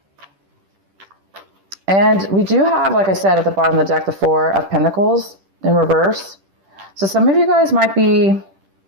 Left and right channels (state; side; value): late; left; 10 ms